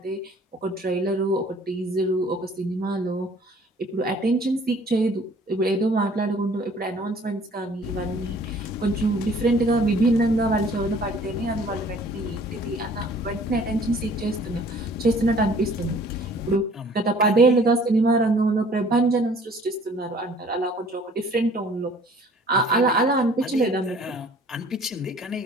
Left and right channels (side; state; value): both; normal; correlation 0.54